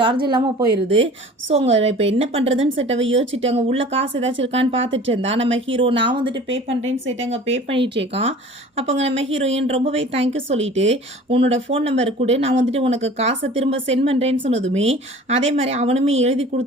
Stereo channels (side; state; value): both; normal; correlation 0.44